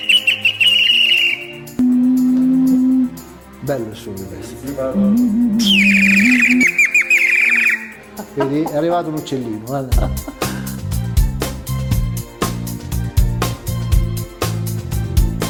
Bello il suono di questo. Vedi, è arrivato un uccellino, guarda.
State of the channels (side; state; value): both; identical; correlation 1.00